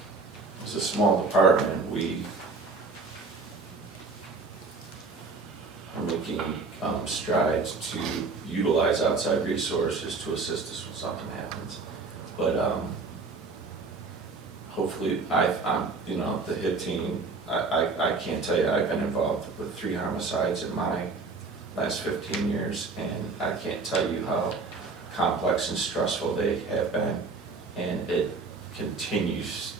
it's a small department. We are making strides to utilize outside resources to assist us when something happens. But hopefully, I'm the HIT team. I can't tell you, I've been involved with 3 homicides in my last 15 years, and I can't tell you how complex and stressful they have been, and it continues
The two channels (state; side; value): quieter; left; 4.1 dB